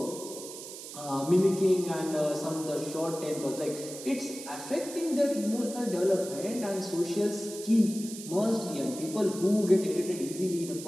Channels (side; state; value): right; noise; hiss, 12 dB below the sound